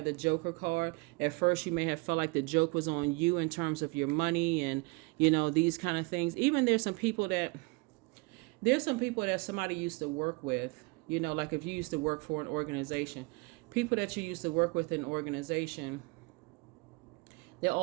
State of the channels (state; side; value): quieter; left; 27.5 dB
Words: the Joker card. At first, you may have felt like the joke was on you in terms of your money and, these kind of things. Even there's some people that somebody used to work with. Like if you used to work for an organization, people that you used to work with in an organization, They're